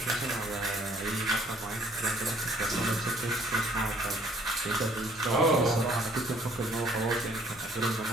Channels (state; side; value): normal; both; correlation 0.60